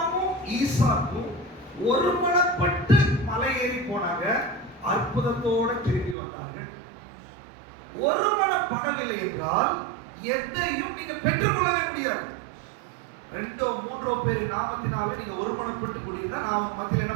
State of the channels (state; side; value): drops out; left; at 6.2 s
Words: ஈசாக்கும் ஒருமனப்பட்டு மலை ஏறி போனாங்க, அற்புதத்தோட திரும்பி வந்தார்கள். ஒருமனப்படவில்லை என்றால் எதையும் நீங்க பெற்றுக்கொள்ளவே முடியாது. 2 3 பேர் நாமத்தினால நீங்க ஒருமனப்பட்டு கூடியிருந்தா நான் உங்க மத்தியில என்ன